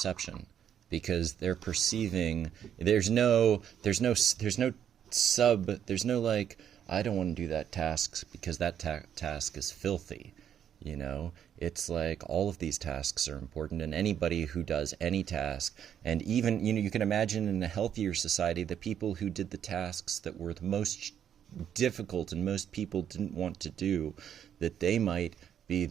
because they're perceiving there's no like I don't want to do that task because that task is filthy. You know, it's like all of these tasks are important, and anybody who does any task, and even, you know, you can imagine in a healthier society, the people who did the tasks that were the most difficult and most people didn't want to do, that they might be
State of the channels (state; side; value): quieter; left; 9.3 dB